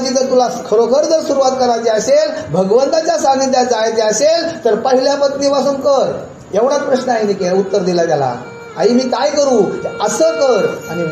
जर तुला खरोखर जर सुरुवात करायची असेल, भगवंताच्या सानिध्यात जायचे असेल, तर पहिल्या पत्नीपासून कर. एवढाच प्रश्न आहे, उत्तर दिला त्याला. आई मी काय करू? असं कर. आणि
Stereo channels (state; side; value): identical; both; correlation 1.00